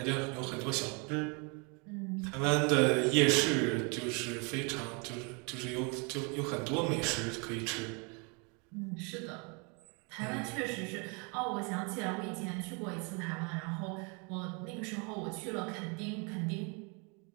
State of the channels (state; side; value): quieter; left; 33.1 dB